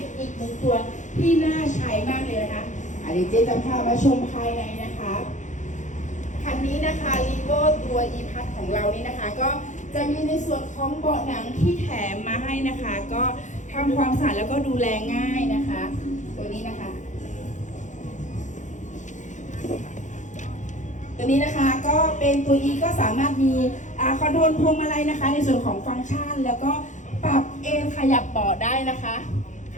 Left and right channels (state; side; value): late; right; 0.35 ms